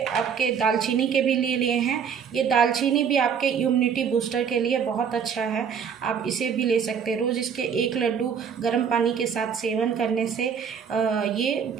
आपके दालचीनी के भी ले लिए हैं। ये दालचीनी भी आपके इम्यूनिटी बूस्टर के लिए बहुत अच्छा है, आप इसे भी ले सकते हैं। रोज़ इसके 1 लड्डू गर्म पानी के साथ सेवन करने से ये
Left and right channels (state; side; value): quieter; left; 7.2 dB